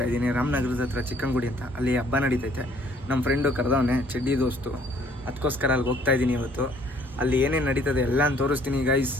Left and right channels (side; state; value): both; normal; correlation 0.60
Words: ಇದ್ದೀನಿ. ರಾಮನಗರದ ಹತ್ರ ಚಿಕ್ಕಂಗುಡಿ ಅಂತ, ಅಲ್ಲಿ ಹಬ್ಬ ನಡೀತೈತೆ. ನಮ್ಮ ಫ್ರೆಂಡು ಕರೆದವನೆ, ಚಡ್ಡಿ ದೋಸ್ತು, ಅದಕ್ಕೋಸ್ಕರ ಅಲ್ಲಿಗೆ ಹೋಗ್ತಾ ಇದ್ದೀನಿ ಇವತ್ತು. ಅಲ್ಲಿ ಏನೇನು ನಡೀತದೆ ಎಲ್ಲ ತೋರಿಸ್ತೀನಿ ಗೈಸ್.